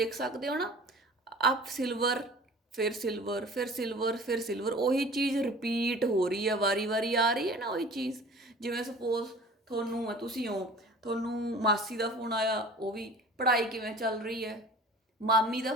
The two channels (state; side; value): normal; both; correlation 0.44